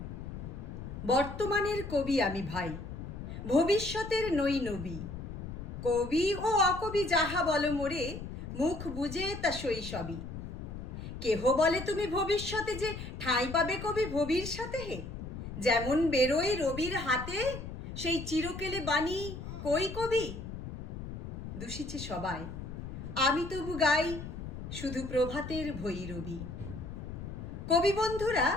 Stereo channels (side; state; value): left; noise; rumble, 8 dB below the sound